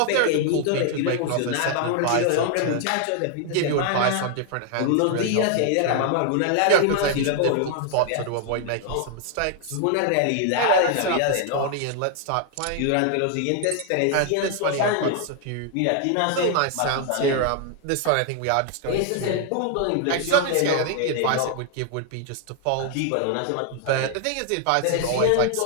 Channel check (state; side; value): different; both; correlation 0.00